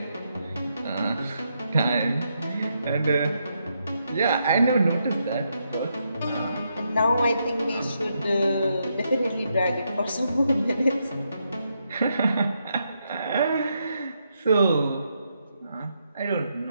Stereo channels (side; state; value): both; inverted; correlation -0.80